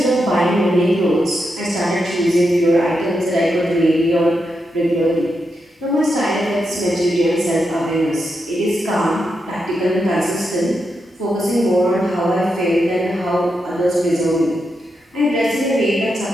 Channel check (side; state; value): both; normal; correlation 0.85